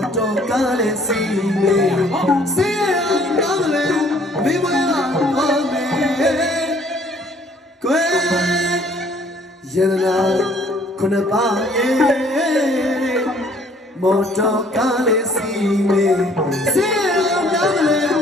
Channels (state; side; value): normal; both; correlation 0.59